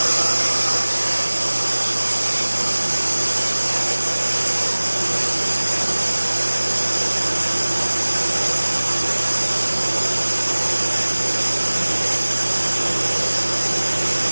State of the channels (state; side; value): inverted; both; correlation -1.00